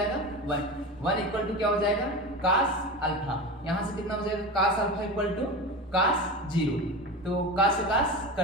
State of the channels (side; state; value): both; normal; correlation 0.26